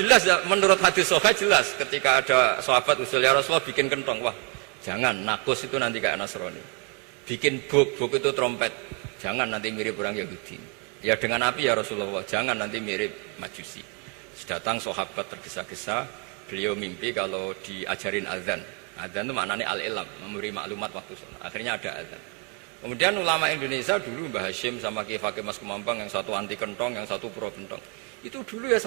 ya, menurut hadis sahih jelas ketika ada sahabat usul ya Rasulullah bikin kentong, wah jangan, nakus itu nanti kayak Nasrani. Bikin buk itu trompet, jangan nanti mirip orang Yahudi. Ya dengan api ya Rasulullah, jangan nanti mirip Majusi. Datang sahabat tergesa-gesa, beliau mimpi kalau diajarin azan. Azan itu maknanya al-ilam, memberi maklumat waktu sholat. Akhirnya ada azan. Kemudian ulama Indonesia dulu Mbah Hashim sama Kiai Fakih Mas Kemampang, yang satu anti kentong, yang satu pro kentong. Itu dulu ya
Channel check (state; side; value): quieter; left; 32.1 dB